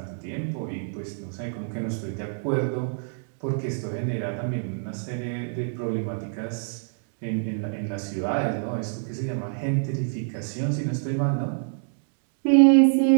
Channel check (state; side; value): silent; left; digital silence